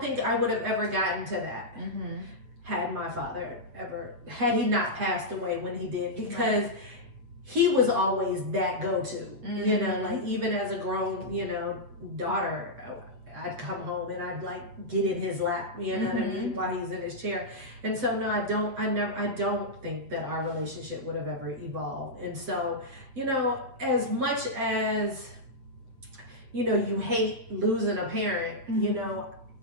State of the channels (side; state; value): left; late; 8.3 ms